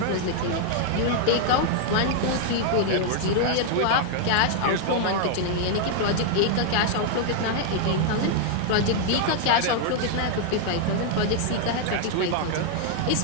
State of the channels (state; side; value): different; both; correlation 0.00